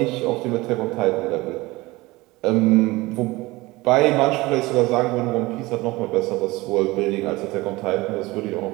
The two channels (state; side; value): quieter; left; 20.9 dB